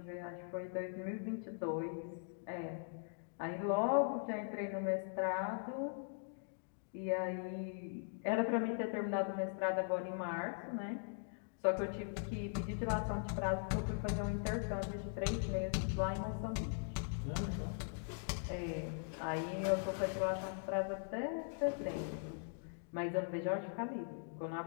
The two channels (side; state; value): right; silent; digital silence